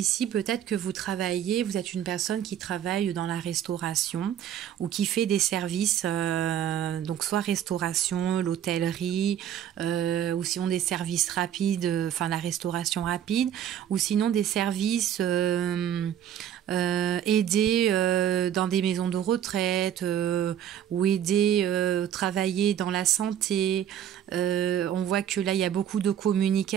peut-être que vous travaillez, vous êtes une personne qui travaille dans la restauration ou qui fait des services, donc soit restauration, l'hôtellerie, ou sinon des services rapides, enfin la restauration rapide, ou sinon des services aider dans des maisons de retraite ou aider travailler dans la santé. On voit que là, il y a beaucoup de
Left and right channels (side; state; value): left; quieter; 10.1 dB